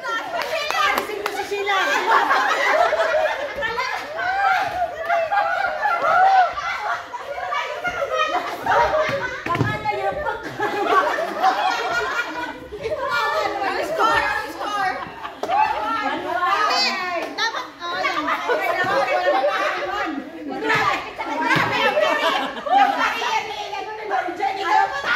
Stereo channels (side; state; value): both; identical; correlation 1.00